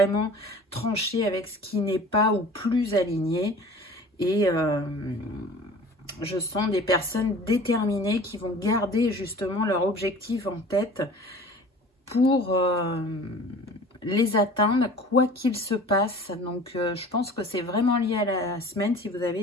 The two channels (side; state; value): both; normal; correlation 0.43